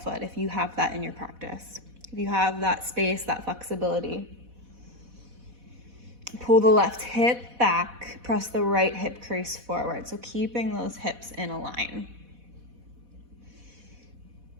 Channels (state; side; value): late; left; 4.1 ms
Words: foot if you have that in your practice. If you have that space, that flexibility. Pull the left hip back, press the right hip crease forward. So keeping those hips in a line.